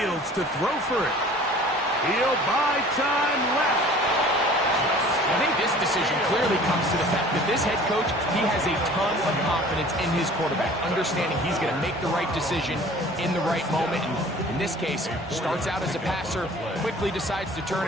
to throw for it. He'll buy time left. I think this decision clearly comes to the fact that this head coach, he has a ton of confidence in his quarterback, understanding he's going to make the right decision in the right moment. And in this case, starts out as a passer, quickly decides to turn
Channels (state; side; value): normal; both; correlation 0.47